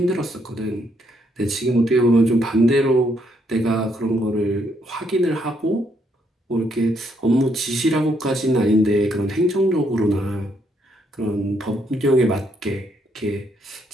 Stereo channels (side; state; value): both; normal; correlation 0.73